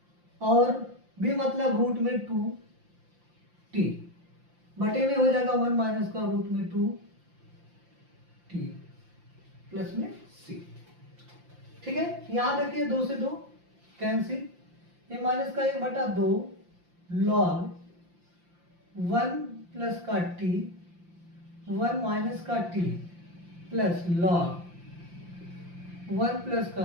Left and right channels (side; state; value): left; late; 5.8 ms